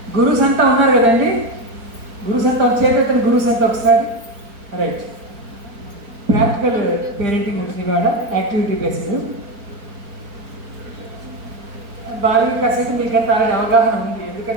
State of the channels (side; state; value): left; late; 4.4 ms